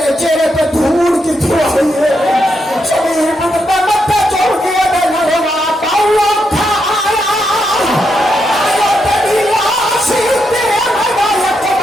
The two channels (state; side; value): normal; both; correlation 0.82